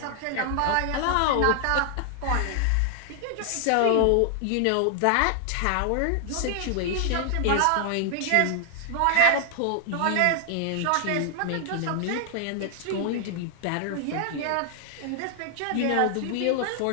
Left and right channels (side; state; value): both; different; correlation 0.00